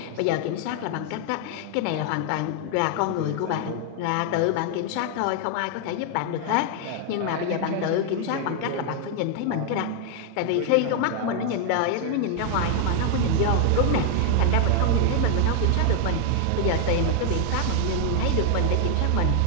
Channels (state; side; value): different; both; correlation 0.00